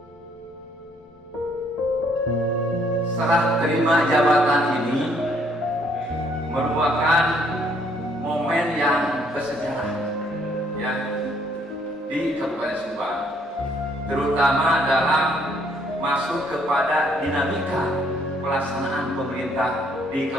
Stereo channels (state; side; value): normal; both; correlation 0.67